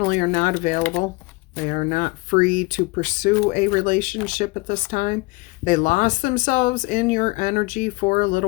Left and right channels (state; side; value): quieter; right; 24.5 dB